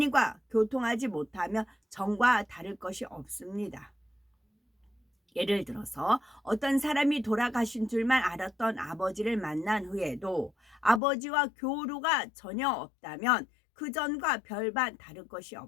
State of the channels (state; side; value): drops out; right; at 11.0 s